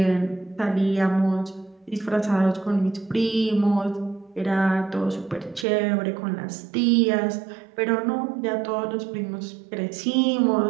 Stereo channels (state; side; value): drops out; left; at 5.7 s